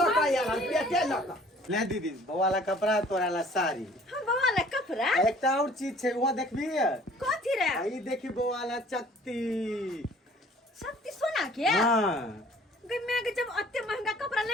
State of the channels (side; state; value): both; normal; correlation 0.53